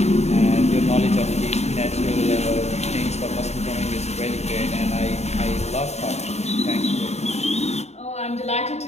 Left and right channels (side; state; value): right; late; 0.32 ms